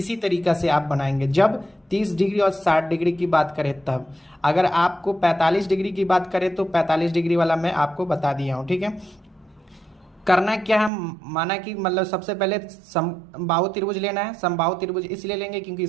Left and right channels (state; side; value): drops out; left; at 10.9 s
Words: तरीका से आप बनाएंगे। जब 30 डिग्री और 60 डिग्री की बात करें तब, अगर आपको 45 डिग्री की बात करें तो 45 डिग्री वाला मैं आपको बता दिया हूँ। ठीक है, करना क्या है, माना कि मतलब सबसे पहले समबाहु त्रिभुज लेना है। समबाहु त्रिभुज इसलिए लेंगे क्योंकि